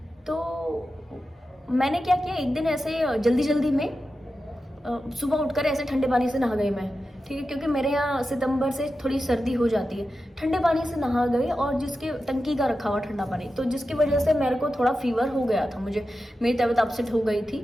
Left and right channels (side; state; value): both; normal; correlation 0.91